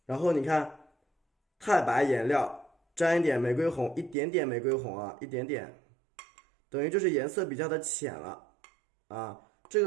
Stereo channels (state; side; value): drops out; left; at 4.2 s